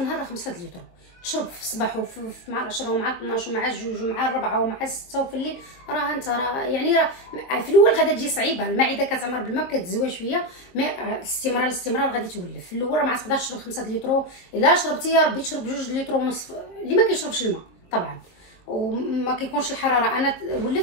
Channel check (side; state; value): right; late; 22 ms